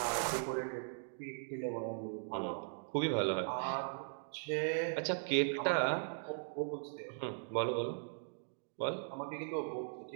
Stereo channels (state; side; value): silent; left; digital silence